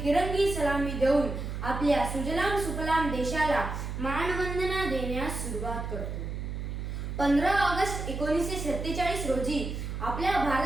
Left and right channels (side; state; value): right; noise; hum, 5 dB below the sound